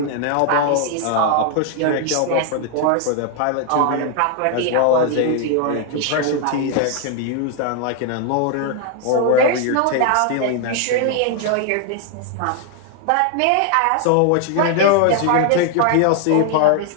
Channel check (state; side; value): different; both; correlation 0.00